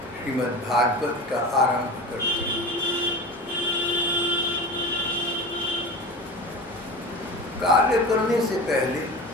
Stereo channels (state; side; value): normal; both; correlation 0.32